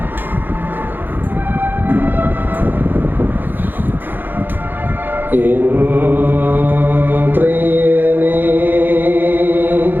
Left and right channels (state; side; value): late; left; 0.091 ms